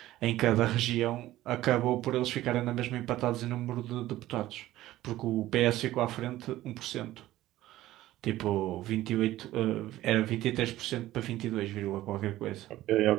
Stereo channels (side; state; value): left; quieter; 15.3 dB